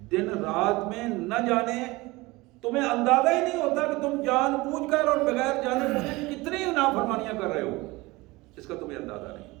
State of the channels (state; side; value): quieter; left; 21.9 dB